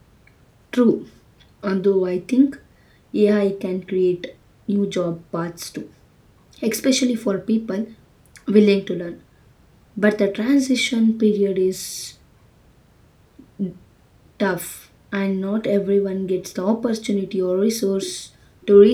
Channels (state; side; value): identical; both; correlation 1.00